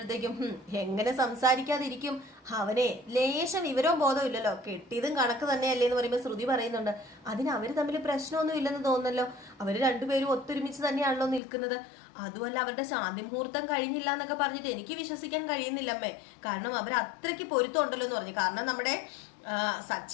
എങ്ങനെ സംസാരിക്കാതിരിക്കും, അവനെ ലേശം വിവരവും ബോധവും ഇല്ലല്ലോ, കെട്ടിയതും കണക്ക് തന്നെയല്ലേ എന്ന് പറയുമ്പോൾ ശ്രുതി പറയുന്നുണ്ട് അതിന് അവര് തമ്മിൽ പ്രശ്നമൊന്നും ഇല്ലെന്ന് തോന്നുന്നല്ലോ, അവര് രണ്ടുപേരും ഒത്തൊരുമിച്ച് തന്നെയാണല്ലോ നിൽക്കുന്നത്, അതുമല്ല അവരുടെ ശാന്തി മുഹൂർത്തം കഴിഞ്ഞില്ല എന്നൊക്കെ പറഞ്ഞിട്ട് എനിക്ക് വിശ്വസിക്കാൻ കഴിയുന്നില്ലമ്മേ, കാരണം അവർ അത്രയ്ക്ക് പൊരുത്തം ഉണ്ടല്ലോ എന്ന് പറഞ്ഞു. കാരണം നമ്മുടെ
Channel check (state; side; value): drops out; right; at 11.4 s